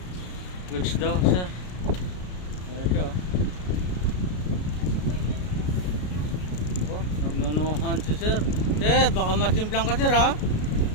Goods daw sir. Ito. Oh, nagnunuhan si sir. Sir, baka masimplang ka sir ha?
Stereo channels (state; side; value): late; right; 33 ms